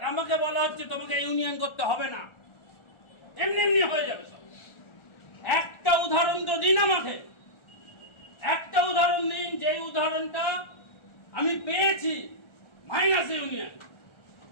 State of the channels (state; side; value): late; right; 1.4 ms